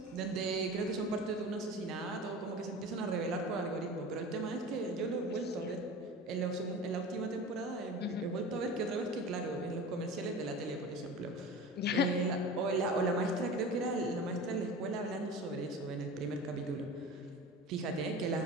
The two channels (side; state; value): both; normal; correlation 0.34